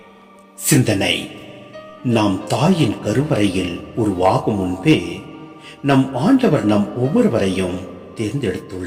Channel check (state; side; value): identical; both; correlation 1.00